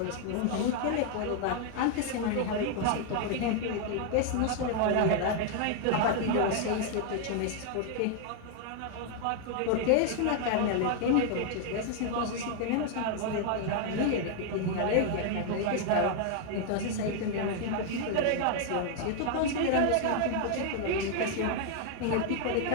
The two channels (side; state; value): both; different; correlation 0.00